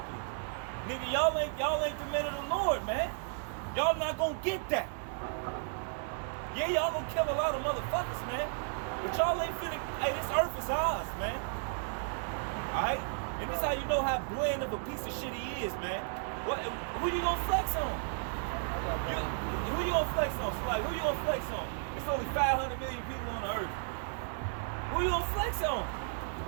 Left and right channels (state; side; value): silent; left; 55 dB below the other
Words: Nigga, y'all ain't the men of the Lord, man. Y'all not gonna get that. Yeah, y'all gonna kill a lot of motherfuckers, man. But y'all ain't finna, hey, this earth is ours, man. Alright? And this how you know how bland of a piece of shit he is, man. Who you gonna flex on? Who you gonna flex on? So like, who you gonna flex on? It's only 500 million people on the earth. Who you gonna flex on?